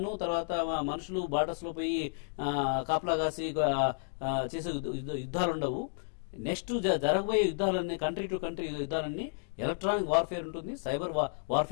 తర్వాత మనుషులు బార్డర్స్ లో పోయి కాపలా కాసి చేసే యుద్ధాలు ఉండవు. నెక్స్ట్ జరగబోయే యుద్ధాలన్నీ కంట్రీ టు కంట్రీ యుద్ధాలన్నీ ఎలక్ట్రానిక్ వార్ఫేర్ ఉంటుంది, సైబర్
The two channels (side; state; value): right; silent; digital silence